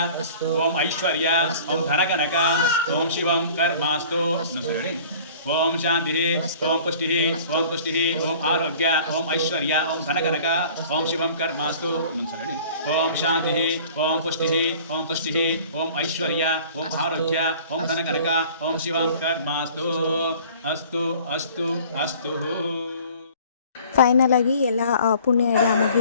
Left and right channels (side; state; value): both; inverted; correlation -0.48